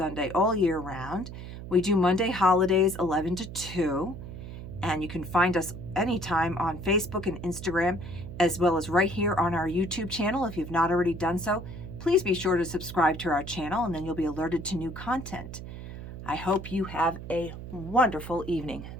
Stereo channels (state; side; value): noise; right; hum, 10 dB below the sound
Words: all year round. We do Monday holidays 11 to 2. And you can find us anytime on Facebook and Instagram, as well as right here on our YouTube channel. If you've not already done so, please be sure to subscribe to our channel, and then you'll be alerted to new content. I hope you have a wonderful evening.